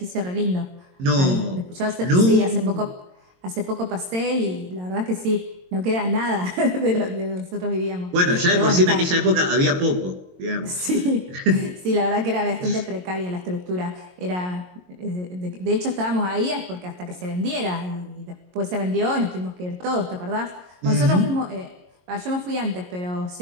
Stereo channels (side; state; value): left; late; 22 ms